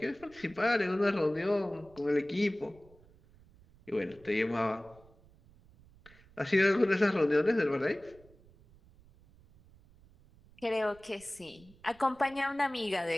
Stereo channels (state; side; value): noise; right; rumble, 26 dB below the sound